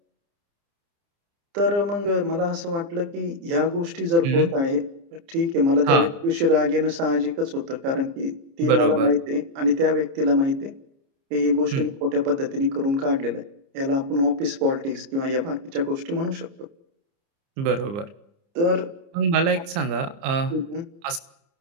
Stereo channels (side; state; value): left; late; 30 ms